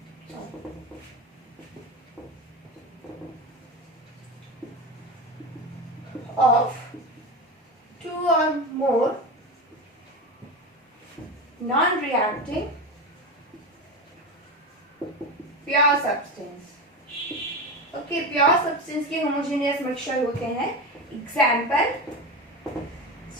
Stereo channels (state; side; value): normal; both; correlation 0.21